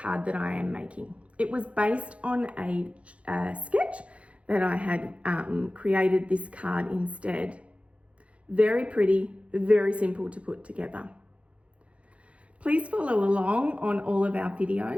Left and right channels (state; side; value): late; left; 0.063 ms